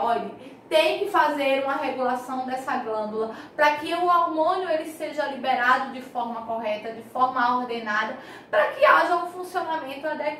tem que fazer uma regulação dessa glândula para que o hormônio ele seja liberado de forma correta, de forma ordenada, para que haja um funcionamento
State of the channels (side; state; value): both; identical; correlation 1.00